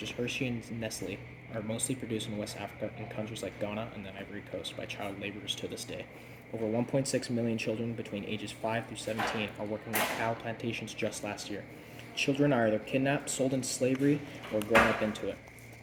as Hershey and Nestle are mostly produced in West Africa in countries like Ghana and the Ivory Coast by child laborers to this day. Over 1.6 million children between ages 5 through 17 are working on cacao plantations just last year. Children are either kidnapped, sold into slavery, or grown up into it.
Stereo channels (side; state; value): both; identical; correlation 1.00